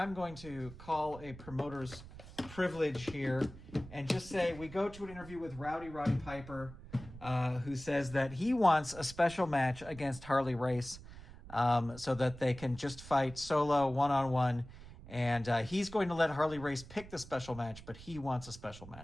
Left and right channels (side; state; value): right; noise; rumble, 16 dB below the sound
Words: to call a promoter's privilege here and just say we go to an interview with Roddy Piper, who says that he wants a special match against Harley Race, so that they can just fight solo, one-on-one. And he's going to let Harley Race pick the special match, but he wants a special